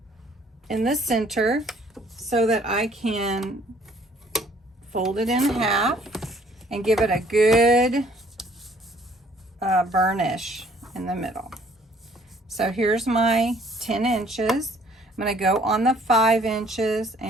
in the center so that I can fold it in half and give it a good burnish in the middle. So here's my 10 inches. I'm going to go on the 5 inches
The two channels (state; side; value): normal; both; correlation 0.60